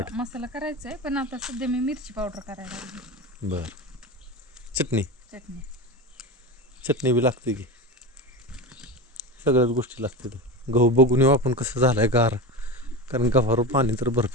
मसाला करायचा आहे पण आता सध्या मी मिरची पावडर करायला लागली. बर. चटणी चटणी चटणी बी लागते की सगळ्याच गोष्टी लागतात. गहू बघून येऊ आपण कसं झालंय गार. कारण गव्हावर पाणी तर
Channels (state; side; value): normal; both; correlation 0.24